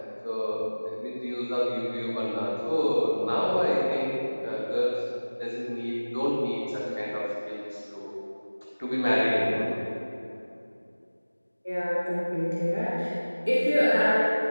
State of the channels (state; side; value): inverted; both; correlation -1.00